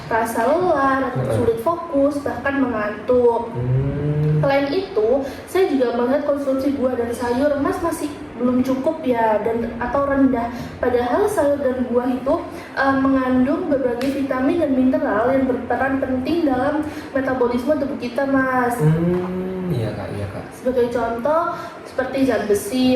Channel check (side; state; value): both; identical; correlation 1.00